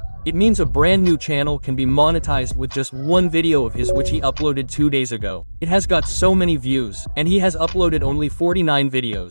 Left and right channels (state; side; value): inverted; both; correlation -1.00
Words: It means a brand new channel can be monetized with just one video of his which he uploaded 2 days ago. It has got so many views, and he has uploaded only 49